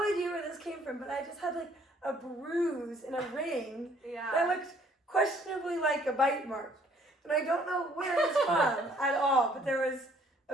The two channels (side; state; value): both; normal; correlation 0.61